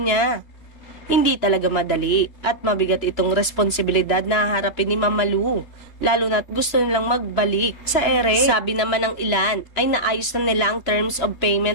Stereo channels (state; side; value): late; right; 3.0 ms